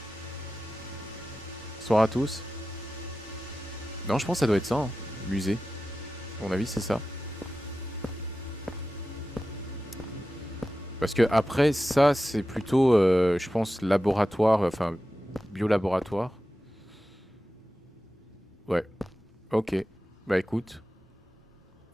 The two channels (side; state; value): both; normal; correlation 0.93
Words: Bonsoir à tous. Non, je pense que ça doit être ça. Hein. Musée. À mon avis, c'est ça. Parce que après, ça, c'est plutôt, je pense, laboratoire, enfin, biolaboratoire. Ouais. Ok. Bah écoute.